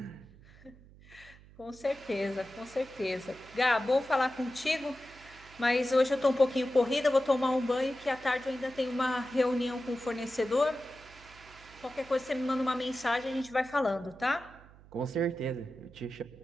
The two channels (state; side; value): noise; right; hum, 23 dB below the sound